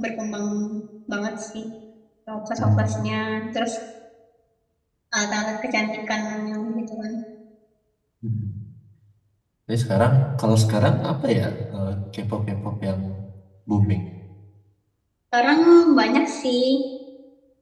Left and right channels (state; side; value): identical; both; correlation 1.00